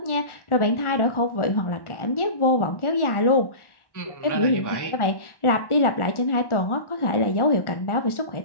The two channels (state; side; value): late; right; 1.4 ms